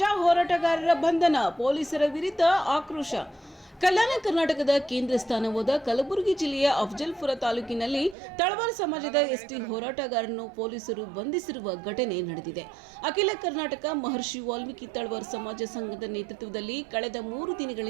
ಹೋರಾಟಗಾರರ ಬಂಧನ, ಪೊಲೀಸರ ವಿರುದ್ಧ ಆಕ್ರೋಶ. ಕಲ್ಯಾಣ ಕರ್ನಾಟಕದ ಕೇಂದ್ರ ಸ್ಥಾನವಾದ ಕಲಬುರಗಿ ಜಿಲ್ಲೆಯ ಅಫಜಲ್ಪುರ ತಾಲೂಕಿನಲ್ಲಿ ತಳವಾರ್ ಸಮಾಜದ ಎಸ್ಟಿ ಹೋರಾಟಗಾರರನ್ನು ಪೊಲೀಸರು ಬಂಧಿಸಿರುವ ಘಟನೆ ನಡೆದಿದೆ. ಅಖಿಲ ಕರ್ನಾಟಕ ಮಹರ್ಷಿ ವಾಲ್ಮೀಕಿ ತಳವಾರ್ ಸಮಾಜ ಸಂಘದ ನೇತೃತ್ವದಲ್ಲಿ ಕಳೆದ 3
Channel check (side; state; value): left; drops out; at 8.2 s